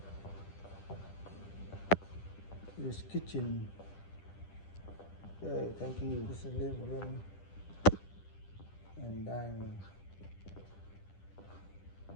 This kitchen. Okay, thank you. This is a living room and dining room.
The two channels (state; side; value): late; right; 10 ms